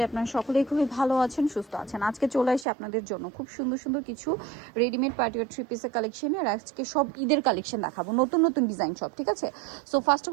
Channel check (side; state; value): left; drops out; at 2.7 s